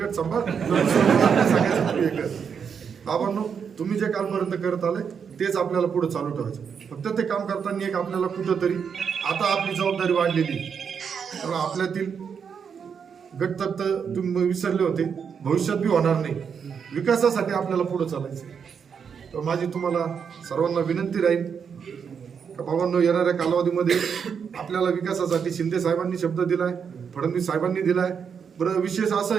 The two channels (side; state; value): left; quieter; 6.8 dB